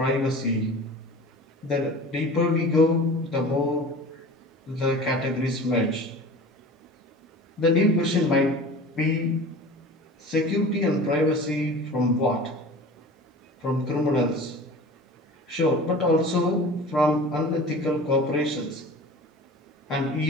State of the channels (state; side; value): normal; both; correlation 0.38